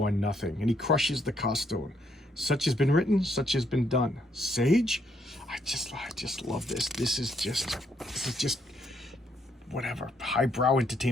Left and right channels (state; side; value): normal; both; correlation 0.73